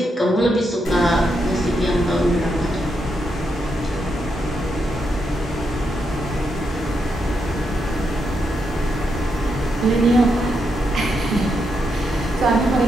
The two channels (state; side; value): normal; both; correlation 0.82